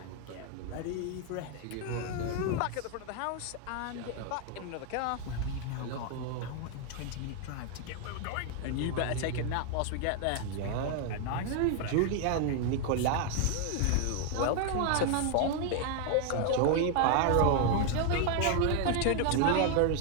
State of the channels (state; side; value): different; both; correlation 0.00